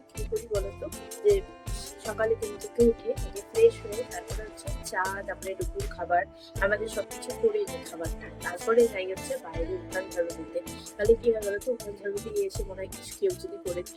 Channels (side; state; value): both; identical; correlation 1.00